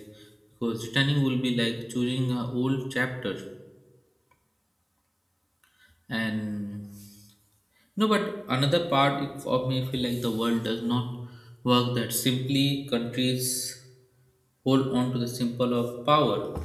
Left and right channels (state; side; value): identical; both; correlation 1.00